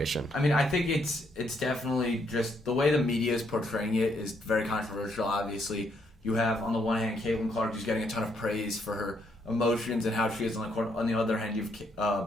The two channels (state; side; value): normal; both; correlation 0.74